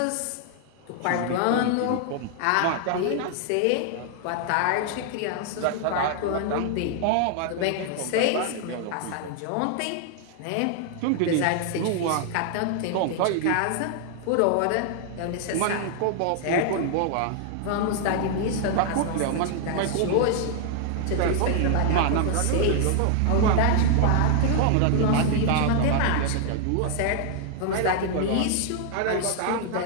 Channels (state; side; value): different; both; correlation 0.00